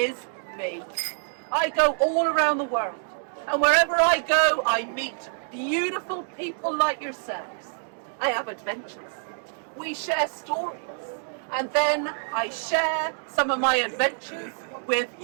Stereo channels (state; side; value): silent; left; digital silence